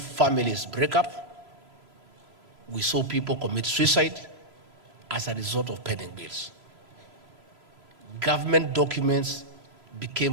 break up. We saw people commit suicide as a result of pending bills. Government documents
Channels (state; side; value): late; left; 3.0 ms